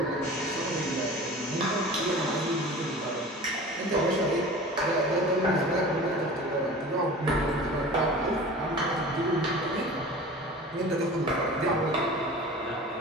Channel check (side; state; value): both; normal; correlation 0.39